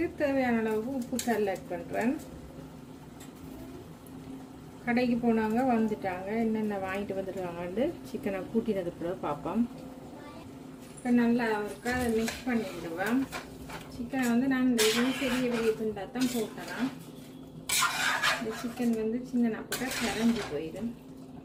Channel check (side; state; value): both; identical; correlation 1.00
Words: தேவையான அளவுக்கு உப்பு கல் ஆட் பண்ணுறேன். கடைக்கு போனாங்க வந்துட்டாங்க, என்னென்ன வாங்கிட்டு வந்துருக்காங்கன்னு சிக்கனை கூட்டினது பிறகு பார்ப்போம். இப்போ நல்லா அவருக்கு அதை மிக்ஸ் பண்ணி விடுவேன். சிக்கனை வந்து நான் இந்த இதுவும் பெரிய பெரிய துண்டாக தான் போட்டேன். இந்த சிக்கன் வந்து சின்ன போட்டால் கரைஞ்சி போயிடும்.